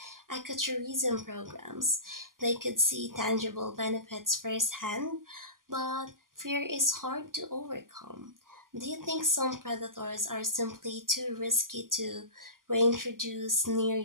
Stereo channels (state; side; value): late; left; 0.91 ms